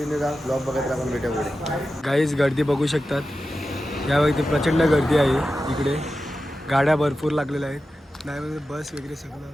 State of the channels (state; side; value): normal; both; correlation 0.92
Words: राहा, ब्लॉग बघत राहा, आपण भेटू पुढे. गाईज गर्दी बघू शकतात, यावेळी प्रचंड गर्दी आहे इकडे. गाड्या भरपूर लागलेल्या आहेत, नाही म्हणजे बस वगैरे सगळं.